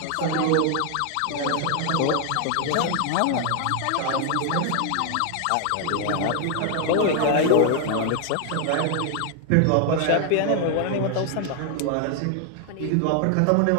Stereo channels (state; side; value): different; both; correlation 0.00